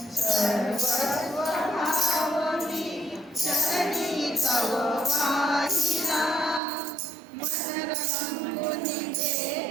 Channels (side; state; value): left; drops out; at 6.6 s